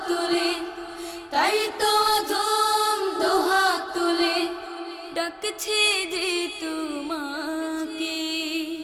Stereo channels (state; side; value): identical; both; correlation 1.00